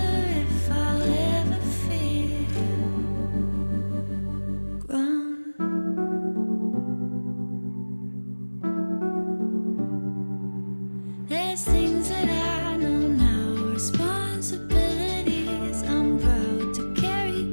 if I'll ever feel grown. There's things that I know now, responsibilities I'm proud to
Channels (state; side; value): inverted; both; correlation -1.00